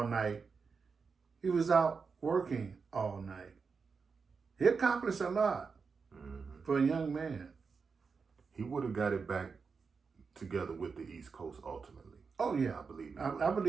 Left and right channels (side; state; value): left; quieter; 5.2 dB